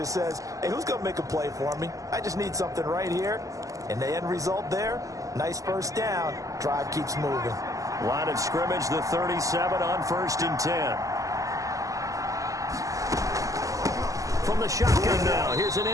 says, hey, who's going to make a play for me? I just need something right here. And the end result there, nice first down. Drive keeps moving. Line of scrimmage, the 37 on 1st and 10. From the shotgun now, here's an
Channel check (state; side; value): late; left; 0.16 ms